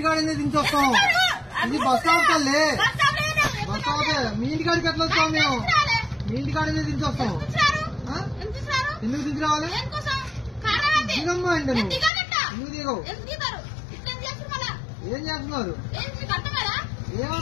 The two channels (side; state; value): right; drops out; at 12.1 s